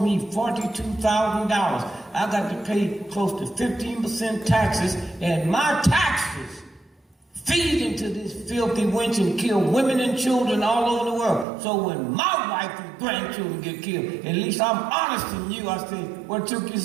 me $42,000. I got to pay close to 15% taxes, and my taxes feed into this filthy wench and kill women and children all over the world. So when my wife and grandchildren get killed, at least I'm honest in you. I say, what took you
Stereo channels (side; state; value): left; drops out; at 11.5 s